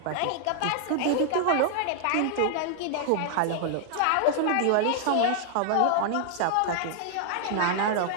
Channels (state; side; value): different; both; correlation 0.00